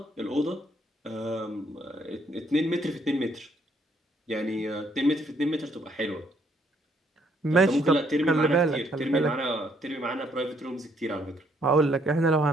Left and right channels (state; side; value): normal; both; correlation 0.69